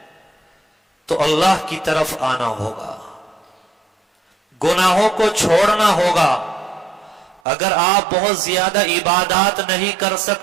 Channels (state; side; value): drops out; left; at 7.4 s